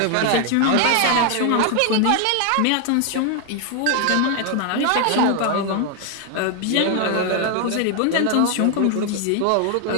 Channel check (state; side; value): different; both; correlation 0.00